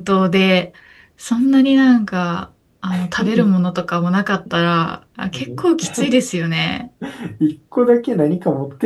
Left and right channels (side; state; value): both; identical; correlation 1.00